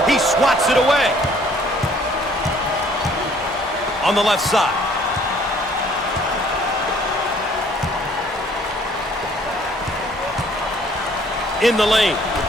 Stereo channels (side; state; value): both; normal; correlation 0.59